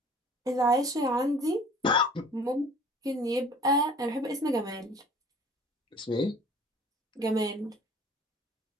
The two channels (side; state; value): both; normal; correlation 0.49